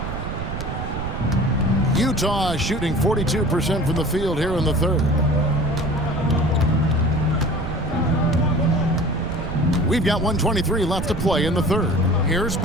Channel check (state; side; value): noise; right; rumble, 5 dB below the sound